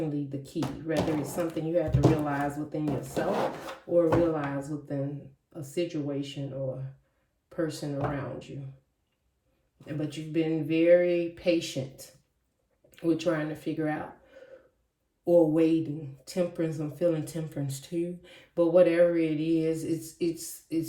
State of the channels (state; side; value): identical; both; correlation 1.00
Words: the key. Whether it's something you have to realize within yourself or realize within a situation or person around you. But you've been very patient with trying to figure out or waiting. Temperance, I'm feeling temperance too. But whatever it is,